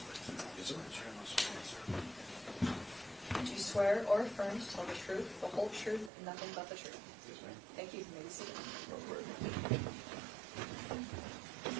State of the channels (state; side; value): drops out; left; at 6.1 s